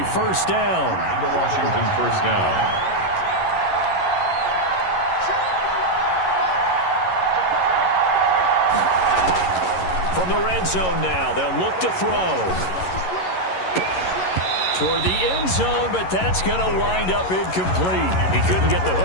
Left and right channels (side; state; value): right; late; 11 ms